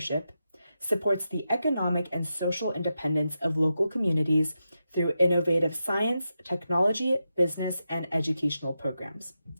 supports the economic and social independence of local communities through innovative science, technology, business, and educational programs.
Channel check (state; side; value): inverted; both; correlation -0.88